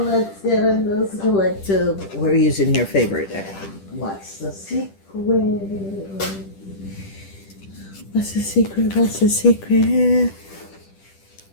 get in this collective. We're using your favorite. What's the secret? What's the secret? What's the secret?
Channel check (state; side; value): late; right; 10 ms